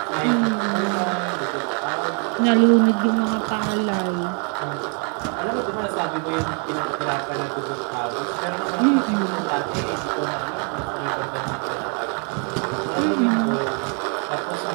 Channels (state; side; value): quieter; left; 39.8 dB